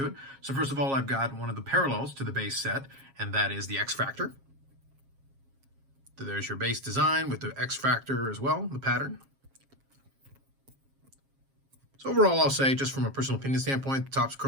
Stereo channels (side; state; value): left; late; 7.4 ms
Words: it. So first of all, I've got one of the parallels to the base set, and that is the X Factor. So there's your base design with the X Factor as well, the pattern. So overall, I'll say, just from a personal opinion standpoint, Topps